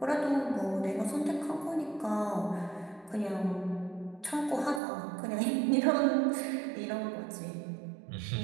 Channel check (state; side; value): drops out; left; at 4.8 s